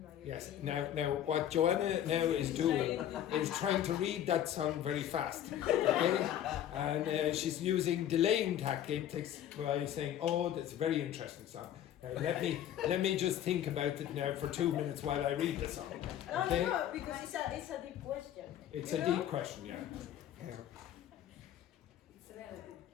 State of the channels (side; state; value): right; quieter; 11.0 dB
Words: my Yes. opinion. Now, what Joanna now is doing is trying to read that song very fast, okay? And she's using delaying tactics by saying, "Oh, that's a very interesting song. Now, let me just think about it now for 2 minutes while I read the song." Okay? No, because it's a deep question. It's You a know? deep question, yeah. It's relative.